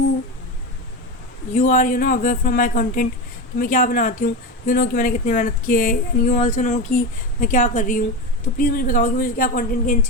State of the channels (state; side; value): normal; both; correlation 0.20